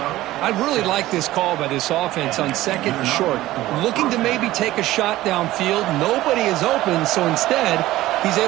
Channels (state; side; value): quieter; left; 16.2 dB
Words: I really like this call by this offense on second and short. Looking to maybe take a shot downfield. Nobody is open, so instead, he's